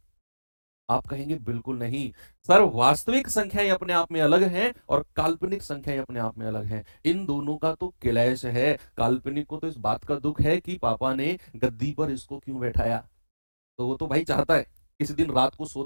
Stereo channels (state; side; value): inverted; both; correlation -1.00